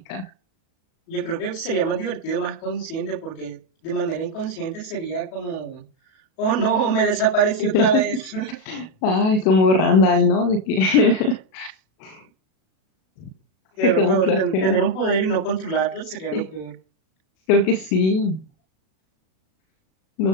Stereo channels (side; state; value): right; late; 37 ms